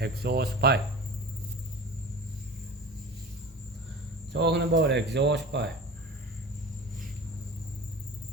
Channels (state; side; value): normal; both; correlation 0.35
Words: exhaust pipe. Talking about exhaust pipe.